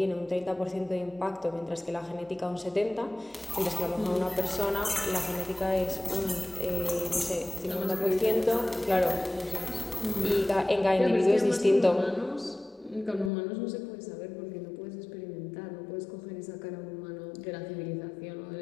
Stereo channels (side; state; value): right; drops out; at 13.3 s